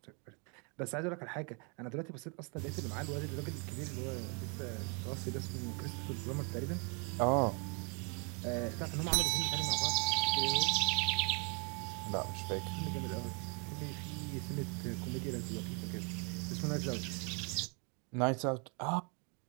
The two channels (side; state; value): left; quieter; 35.3 dB